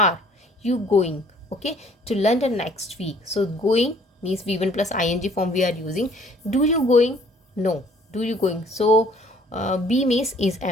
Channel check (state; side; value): normal; both; correlation 0.57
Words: you going, okay, to London next week. So going means v1 plus ing form we are using. Do you going? No. Do you going? So be means is,